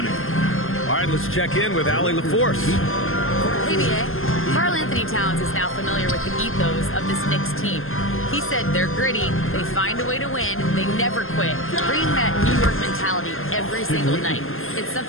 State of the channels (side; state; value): right; late; 0.60 ms